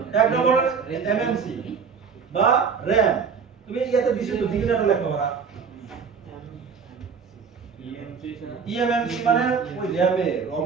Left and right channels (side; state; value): left; quieter; 6.0 dB